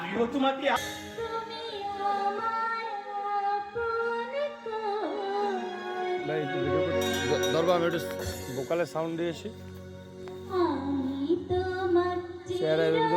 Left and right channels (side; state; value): both; identical; correlation 1.00